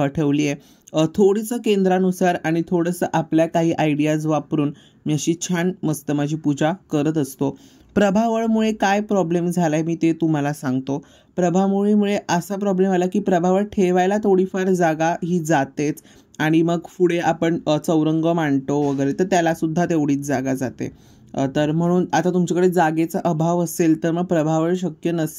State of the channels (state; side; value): identical; both; correlation 1.00